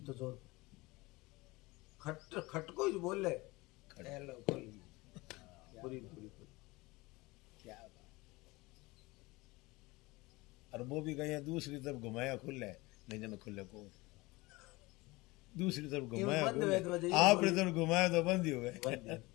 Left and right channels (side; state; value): right; quieter; 22.2 dB